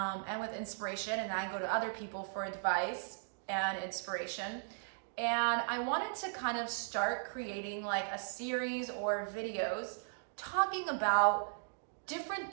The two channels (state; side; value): silent; left; digital silence